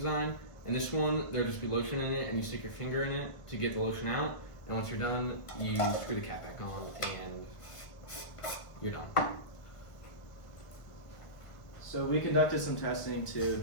And this one, there'll just be lotion in it, and you stick your finger in it to get the lotion out. And once you're done, you screw the cap back on, and you're done. So we conducted some testing to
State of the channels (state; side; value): late; right; 1.5 ms